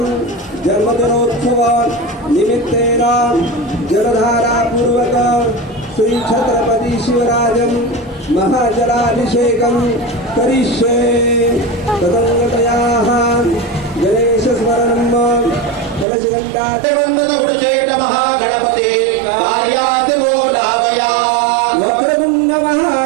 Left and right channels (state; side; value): drops out; left; at 16.1 s